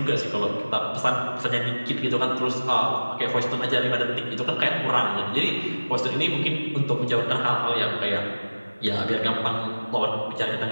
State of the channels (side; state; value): both; inverted; correlation -1.00